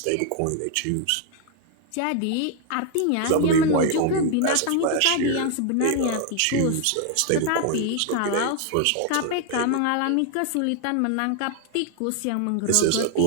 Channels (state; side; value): different; both; correlation 0.00